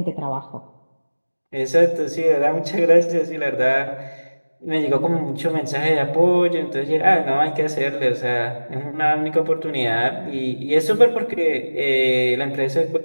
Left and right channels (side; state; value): both; inverted; correlation -1.00